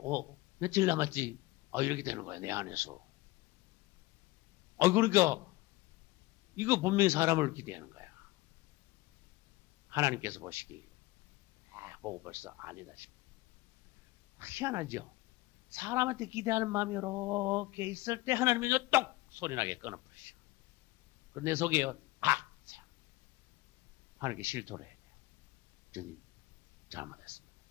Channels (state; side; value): quieter; right; 20.0 dB